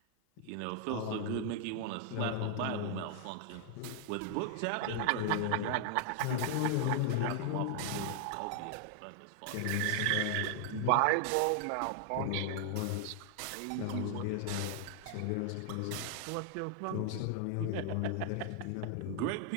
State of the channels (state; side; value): different; both; correlation 0.00